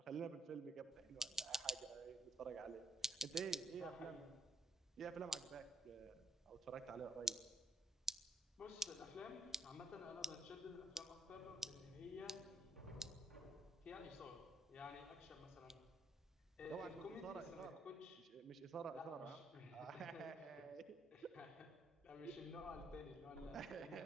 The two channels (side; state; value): both; normal; correlation 0.70